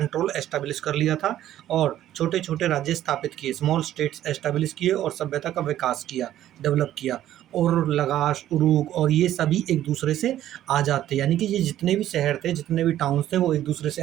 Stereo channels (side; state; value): left; quieter; 12.5 dB